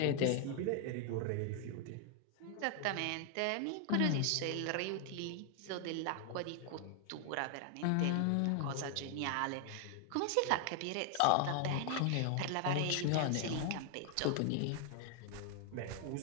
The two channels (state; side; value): different; both; correlation 0.00